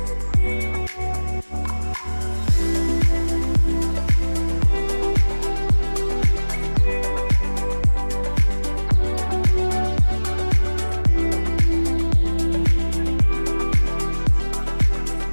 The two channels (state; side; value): inverted; both; correlation -1.00